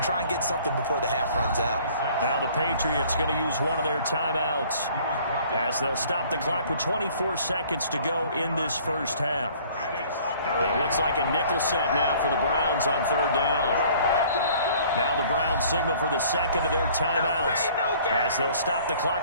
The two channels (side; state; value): both; inverted; correlation -0.54